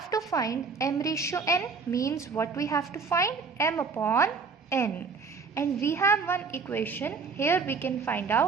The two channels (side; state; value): left; quieter; 4.9 dB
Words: to find m ratio n, means what we have to find? M upon n. And we have one equation, here we can find